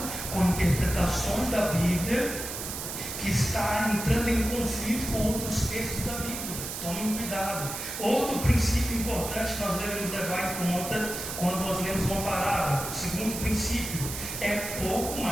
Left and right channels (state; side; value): noise; right; hiss, 6 dB below the sound